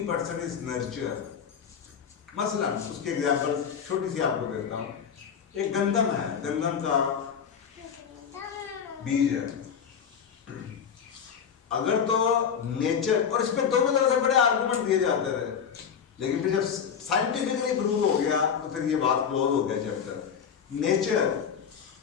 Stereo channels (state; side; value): quieter; right; 7.3 dB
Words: is nurture. मसलन उसकी एग्जाम्पल छोटी सी आपको देता हूँ। एक गंदम है, गंदम का बीज है। अगर तो नेचर, और इस पे दोनों तरह से बड़े आर्गुमेंट दिए जाते थे, लेकिन फिर जब साइंटिफिकली प्रूव हो गया तो फिर ये बात क्लोज हो गया चैप्टर। नेचर,